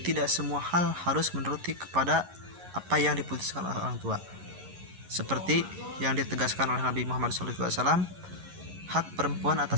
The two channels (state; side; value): late; left; 11 ms